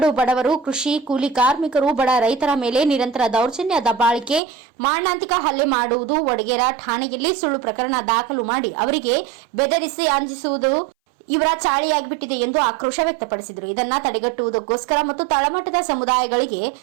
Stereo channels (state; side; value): drops out; left; at 4.4 s